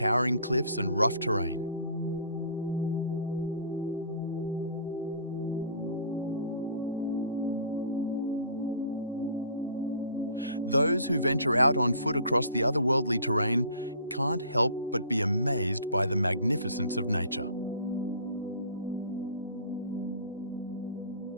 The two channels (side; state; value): both; inverted; correlation -0.49